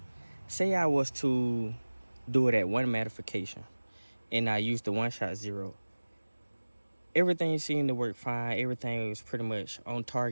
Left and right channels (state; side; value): inverted; both; correlation -1.00